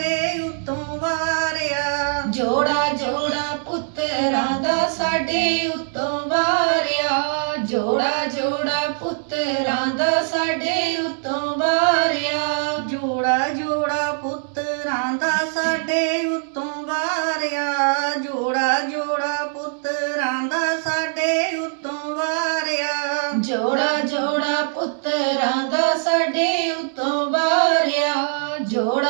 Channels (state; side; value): silent; left; digital silence